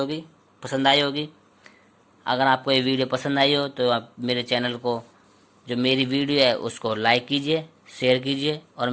पसंद आई होगी। अगर आपको ये वीडियो पसंद आई हो तो आप मेरे चैनल को, जो मेरी वीडियो है उसको लाइक कीजिए, शेयर कीजिए और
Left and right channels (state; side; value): identical; both; correlation 1.00